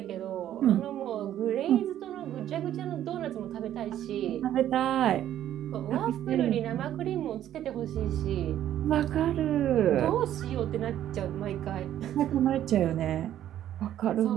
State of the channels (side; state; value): left; quieter; 11.6 dB